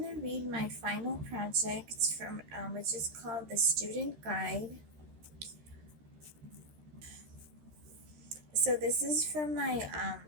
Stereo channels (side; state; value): left; late; 13 ms